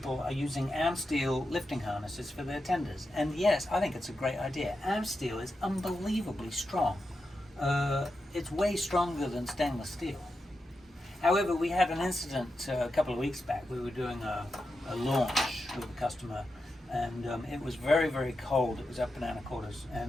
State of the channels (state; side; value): normal; both; correlation 0.88